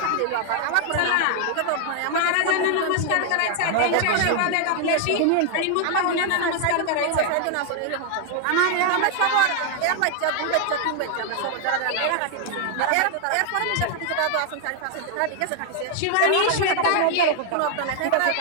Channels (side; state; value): both; different; correlation 0.00